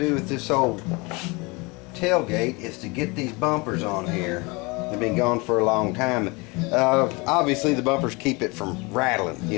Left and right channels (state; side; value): quieter; right; 26.8 dB